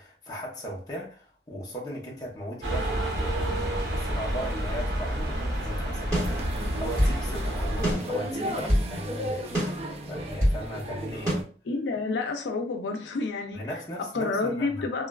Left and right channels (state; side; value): normal; both; correlation 0.67